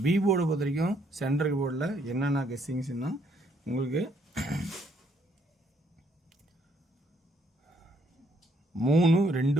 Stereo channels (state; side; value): normal; both; correlation 0.69